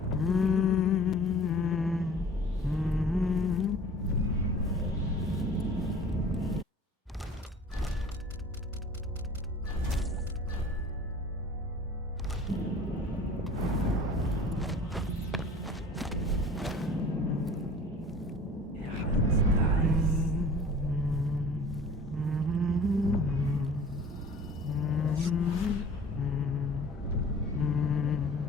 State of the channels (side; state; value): both; normal; correlation 0.45